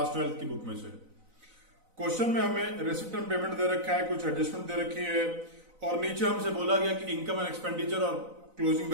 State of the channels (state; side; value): late; left; 4.0 ms